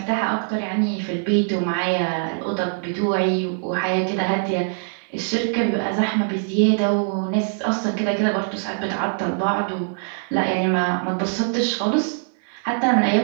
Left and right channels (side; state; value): left; silent; digital silence